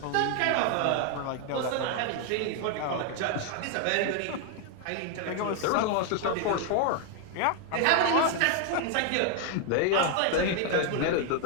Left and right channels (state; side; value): different; both; correlation 0.00